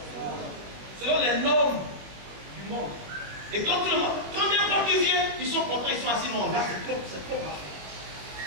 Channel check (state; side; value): late; left; 21 ms